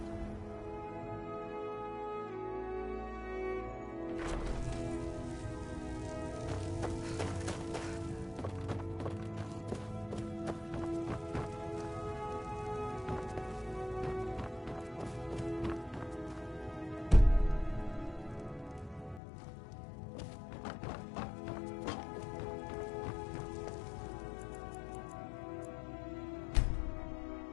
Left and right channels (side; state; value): right; drops out; at 19.2 s